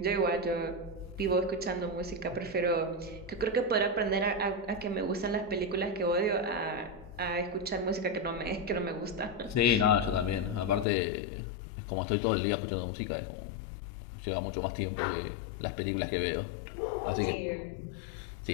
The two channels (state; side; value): drops out; right; at 10.9 s